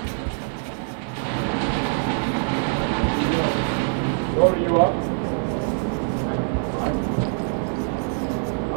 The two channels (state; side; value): silent; left; 59 dB below the other